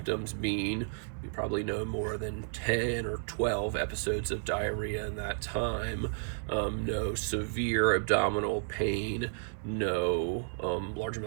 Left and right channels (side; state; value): left; silent; 56 dB below the other